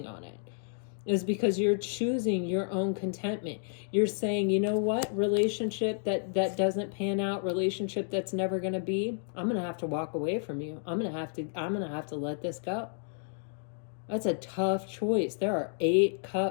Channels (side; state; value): right; silent; digital silence